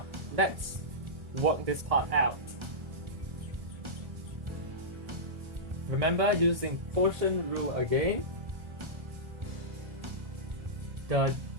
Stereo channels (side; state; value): left; late; 1.7 ms